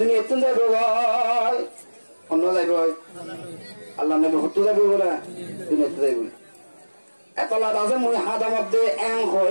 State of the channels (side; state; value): both; inverted; correlation -1.00